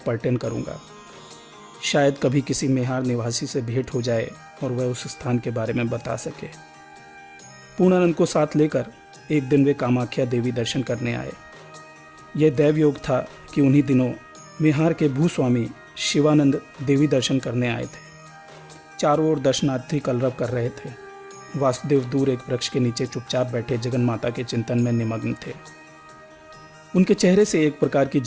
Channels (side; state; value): both; identical; correlation 1.00